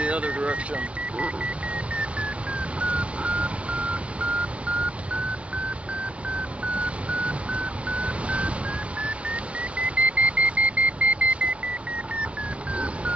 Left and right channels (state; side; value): late; left; 0.062 ms